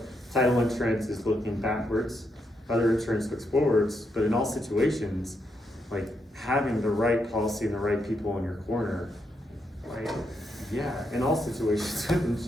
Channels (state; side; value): normal; both; correlation 0.80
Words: title insurance is looking backwards. Other insurance looks forwards, but in all situations, like having the right policy and the right people in your corner, like, yeah, in all situations with